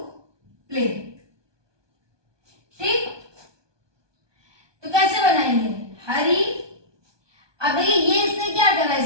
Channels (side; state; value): left; late; 1.2 ms